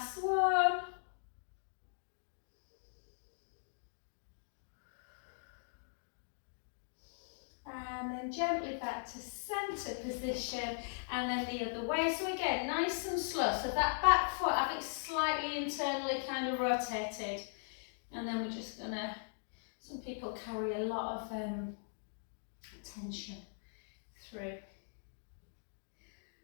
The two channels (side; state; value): right; silent; digital silence